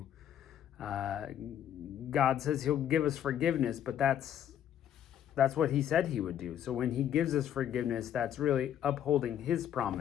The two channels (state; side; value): quieter; right; 10.3 dB